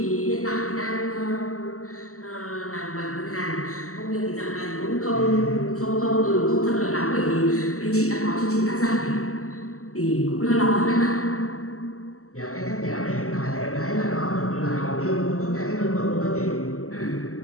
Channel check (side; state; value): right; late; 0.64 ms